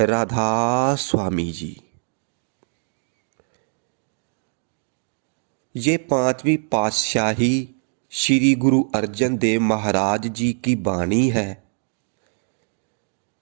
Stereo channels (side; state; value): left; silent; digital silence